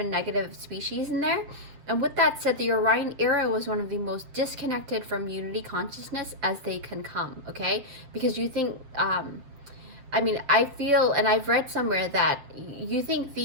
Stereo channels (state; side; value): late; left; 7.6 ms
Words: negative species in there. And with that said, the Orion era was one of the most disconnected from unity consciousness as they can come, okay? Because you think, I feel, and I've read somewhere that you think